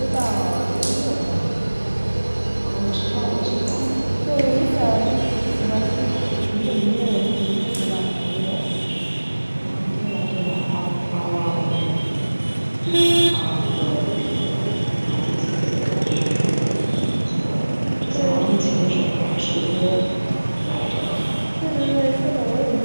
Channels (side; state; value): both; inverted; correlation -1.00